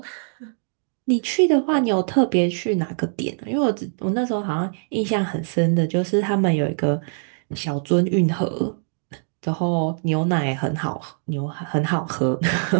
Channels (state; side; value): silent; left; digital silence